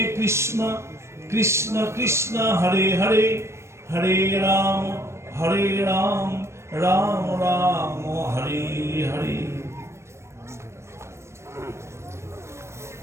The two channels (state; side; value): late; left; 0.13 ms